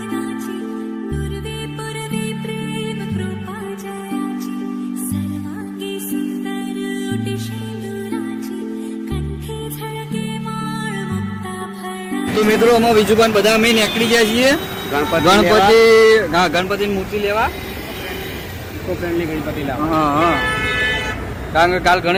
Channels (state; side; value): identical; both; correlation 1.00